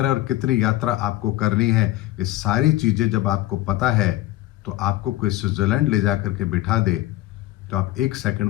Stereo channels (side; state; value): right; quieter; 16.4 dB